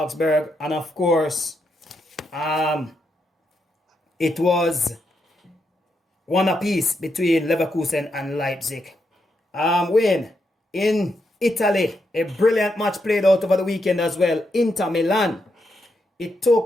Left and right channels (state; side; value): normal; both; correlation 0.82